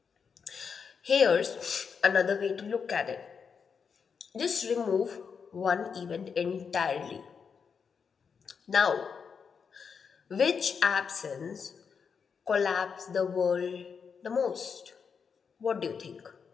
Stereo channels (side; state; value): right; quieter; 6.2 dB